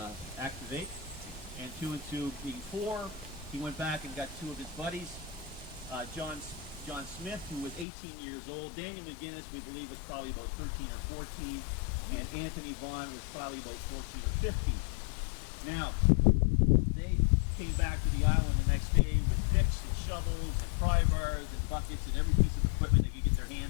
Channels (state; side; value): drops out; right; at 7.9 s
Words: activate, and 2 and 2 being 4, he went back and got 2 of his buddies, John Smith, who was 18 years old. Daniel McGinnis, we believe, was probably about 13 or 14, and Anthony Vaughn was probably about 14 or 15. Now, they came back to the island the next day with picks and shovels and pry bars and buckets and every piece of equipment they could get their